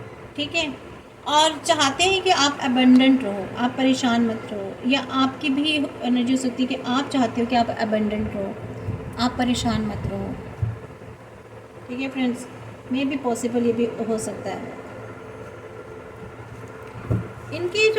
ठीक है, और चाहते हैं कि आप अबंडेंट रहो, आप परेशान मत रहो, या आपकी भी एनर्जी हो सकती है कि आप चाहते हो कि आप अबंडेंट रहो, आप परेशान मत रहो, ठीक है फ्रेंड्स, मे भी पॉसिबल ये भी हो सकता है। इनकी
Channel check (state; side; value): identical; both; correlation 1.00